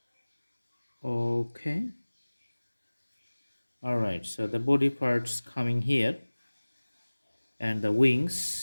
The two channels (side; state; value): both; inverted; correlation -1.00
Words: Okay. Alright, so the body parts coming here and the